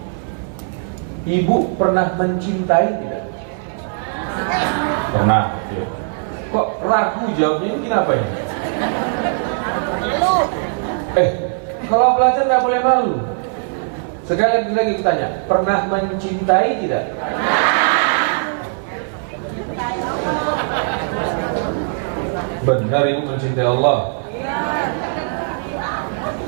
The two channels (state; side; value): silent; left; 60 dB below the other